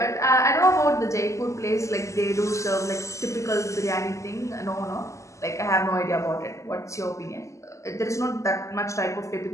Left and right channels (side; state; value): right; late; 0.15 ms